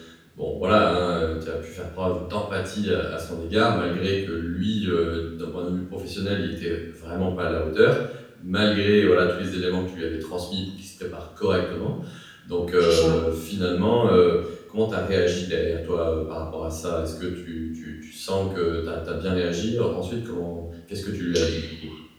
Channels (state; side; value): identical; both; correlation 1.00